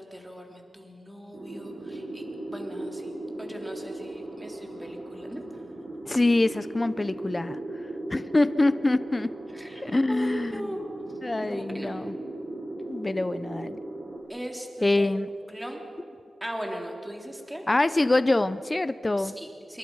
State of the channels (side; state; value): both; normal; correlation 0.98